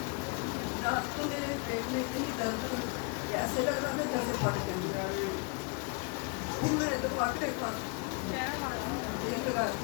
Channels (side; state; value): right; quieter; 31.7 dB